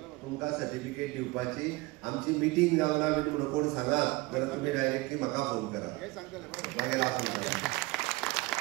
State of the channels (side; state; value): left; quieter; 22.1 dB